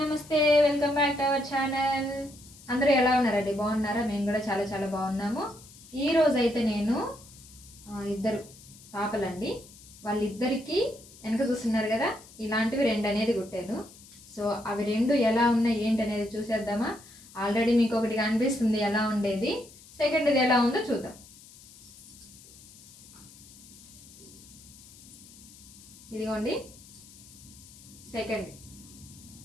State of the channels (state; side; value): noise; left; hiss, 21 dB below the sound